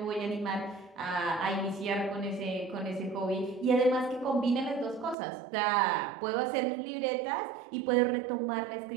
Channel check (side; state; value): left; drops out; at 5.2 s